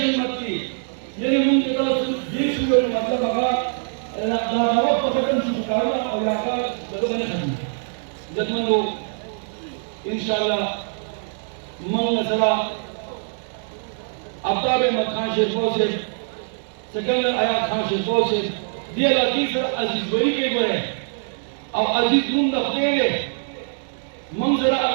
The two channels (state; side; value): silent; left; digital silence